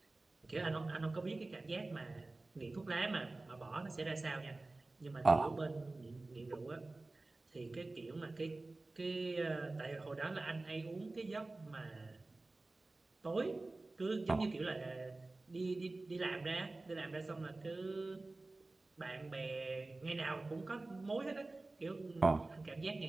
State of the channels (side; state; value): left; quieter; 3.1 dB